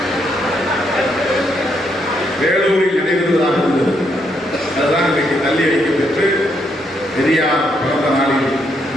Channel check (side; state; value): both; normal; correlation 0.75